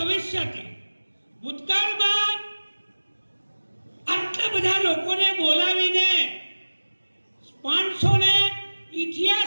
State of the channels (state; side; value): inverted; both; correlation -1.00